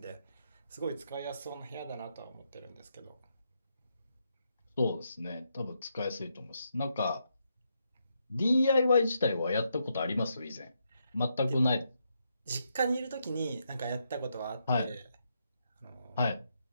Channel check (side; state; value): both; inverted; correlation -0.80